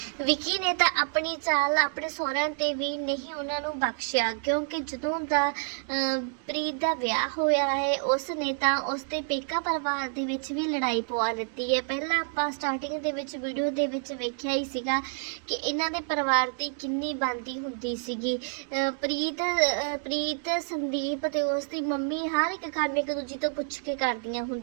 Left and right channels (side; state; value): left; silent; 59 dB below the other